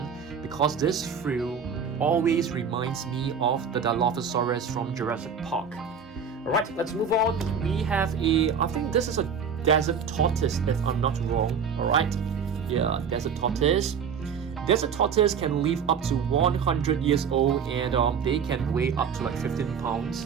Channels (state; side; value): quieter; left; 6.4 dB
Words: because this fruit always reminds me of the Dilophosaurus from Jurassic Park. Alright, let's move on. We have I think this is a desert tortoise if I'm not wrong. Alright, yeah, desert tortoise. Desert tortoise can live up to 100 years old and they can weigh up to like 15 pounds.